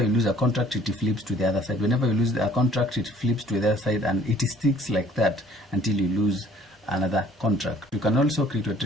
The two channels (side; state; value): both; normal; correlation 0.57